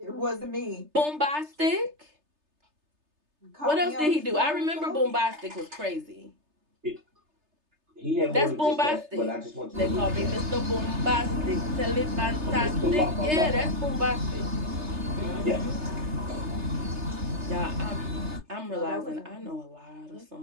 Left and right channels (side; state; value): left; late; 3.3 ms